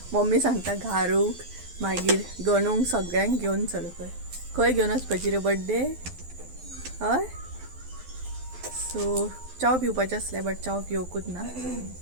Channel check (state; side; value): late; left; 12 ms